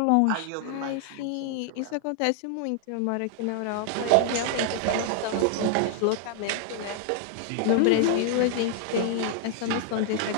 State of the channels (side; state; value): both; different; correlation -0.01